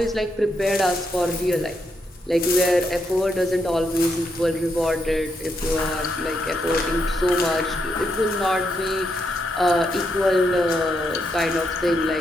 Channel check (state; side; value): normal; both; correlation 0.80